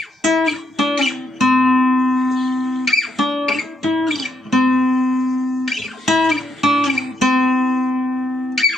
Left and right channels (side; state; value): both; normal; correlation 0.78